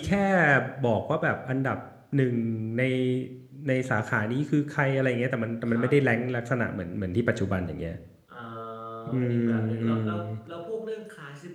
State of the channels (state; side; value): identical; both; correlation 1.00